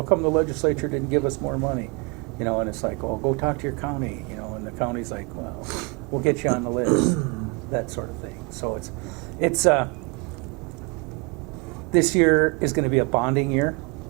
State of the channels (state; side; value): quieter; left; 29.6 dB